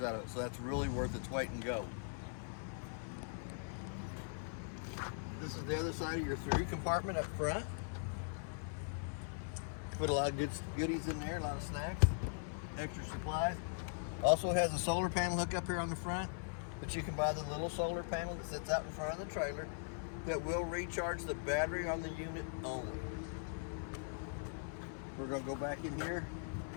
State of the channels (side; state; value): right; silent; 51 dB below the other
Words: out of it. So that's really worth its weight in gold. This is the other side of your through compartment up front. Put a lot of good goodies in there, a lot of snacks, extra supplies. Also has a solar panel hook up here on the front, but you can buy the little solar panel that sits out in front of the trailer that will recharge the battery on the unit only. We're going to go back in here.